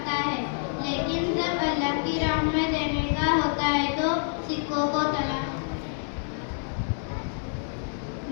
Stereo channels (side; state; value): right; silent; digital silence